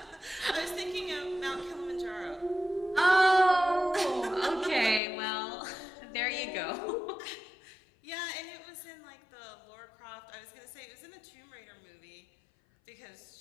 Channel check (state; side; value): drops out; right; at 5.0 s